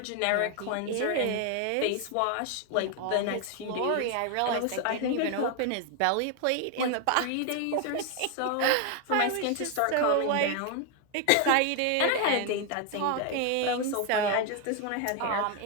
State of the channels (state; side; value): different; both; correlation 0.01